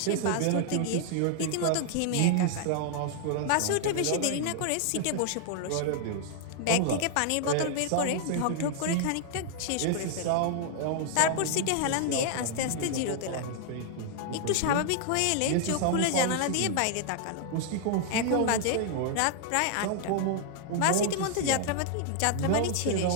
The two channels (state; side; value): different; both; correlation 0.00